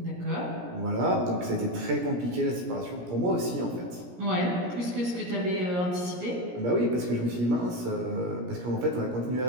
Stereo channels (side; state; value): left; late; 17 ms